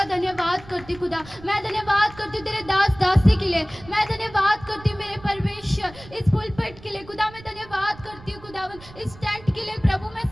धन्यवाद करती खुदा। मैं धन्यवाद करती तेरे दास दासी के लिए, मैं धन्यवाद करती मेरे परमेश्वर इस पुलपिट के लिए खुदा। मैं धन्यवाद करती हूँ खुदावन इस टेंट के लिए प्रभु, मैं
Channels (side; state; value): right; noise; rumble, 19 dB below the sound